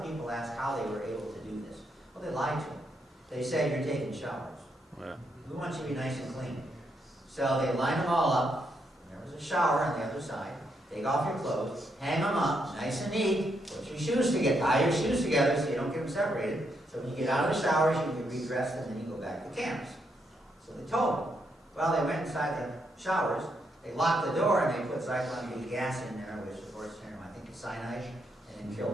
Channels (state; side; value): normal; both; correlation 0.78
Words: people ask how they were able to do this. Well, they lied to them. They say, you're taking showers. Yeah. We want you to be nice and clean. So they line them all up. There was a shower on the other side. Take off your clothes, hang them up, nice and neat. Put your shoes together, tie your shoes together so you don't get them separated. So when you get out of the showers, you can redress and then you go back to camps. So they told them. Well, they went inside the showers. They locked the door and they put cyclone gas in there, which of course, I think it's cyanide, and then killed